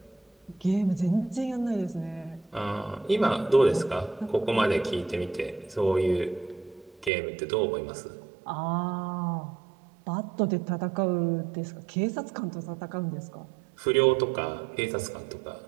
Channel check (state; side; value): drops out; left; at 7.1 s